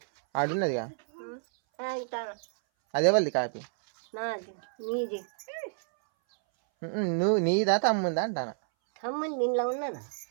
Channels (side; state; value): left; silent; 58 dB below the other